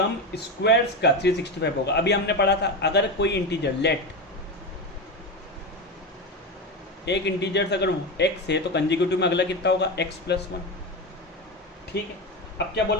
स्क्वायर्स का 365 होगा। अभी हमने पढ़ा था अगर कोई इंटीजर लेट एक इंटीजर्स अगर x है तो कंसेक्यूटिव में अगला कितना होगा x प्लस 1। ठीक है, अब क्या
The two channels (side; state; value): both; normal; correlation 0.18